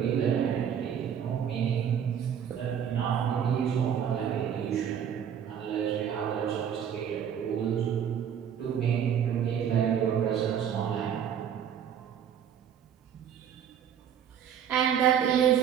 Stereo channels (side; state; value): left; quieter; 8.6 dB